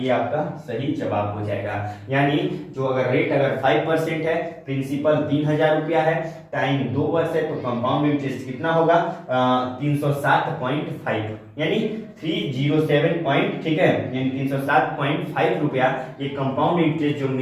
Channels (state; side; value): identical; both; correlation 1.00